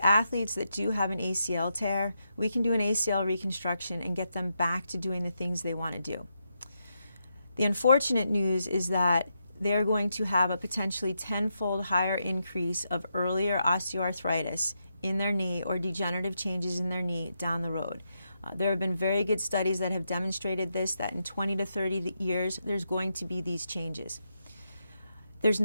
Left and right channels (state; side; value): inverted; both; correlation -0.83